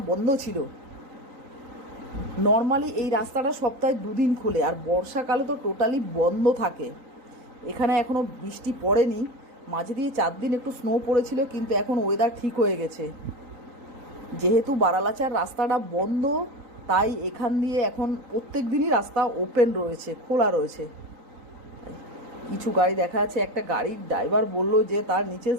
বন্ধ ছিল। নর্মালি এই রাস্তাটা সপ্তাহে 2 দিন খোলে, আর বর্ষাকালে তো টোটালি বন্ধ থাকে। এখানে এখনও বৃষ্টি পড়েনি, মাঝে দিয়ে 4 দিন একটু স্নো পড়েছিল, কিন্তু এখন ওয়েদার ঠিক হয়ে গেছে। যেহেতু বারালাচার রাস্তাটা বন্ধ, তাই এখান দিয়ে এখন প্রত্যেক দিনই রাস্তা ওপেন রয়েছে, খোলা রয়েছে। কিছু গাড়ি দেখা যাচ্ছে, একটা গাড়ির ড্রাইভার বলল যে তার নিচে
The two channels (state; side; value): late; left; 3.9 ms